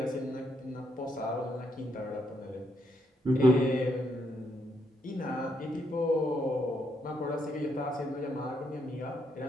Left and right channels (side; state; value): both; normal; correlation 0.76